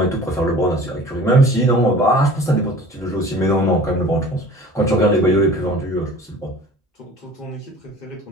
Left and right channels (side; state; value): both; normal; correlation 0.44